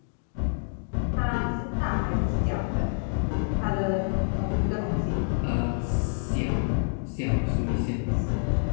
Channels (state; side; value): silent; right; digital silence